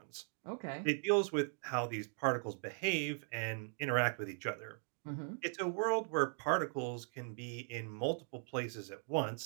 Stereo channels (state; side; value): silent; left; 52 dB below the other